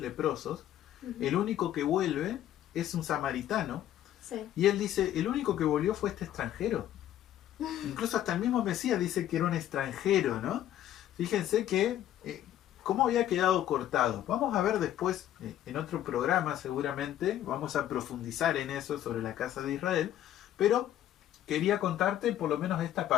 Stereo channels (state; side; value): quieter; right; 12.0 dB